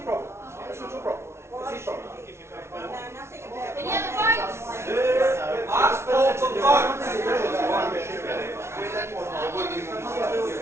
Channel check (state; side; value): late; left; 0.13 ms